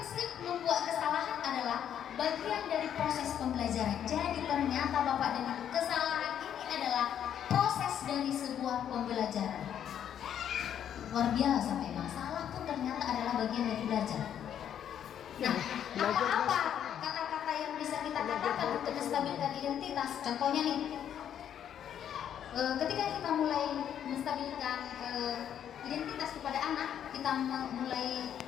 membuat kesalahan adalah bagian dari proses pembelajaran. Jadi ternyata Bapak dan Ibu, kesalahan ini adalah proses dari sebuah pembelajaran. Luar biasa memang, salah pun ternyata adalah bagian dari belajar. Nah, apa-apa kata-kata yang bisa kita katakan untuk menstabilkan identitas? Contohnya nih, ketika kita mulai menstabilkan identitas kepada anak, kita mulai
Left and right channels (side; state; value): right; quieter; 9.5 dB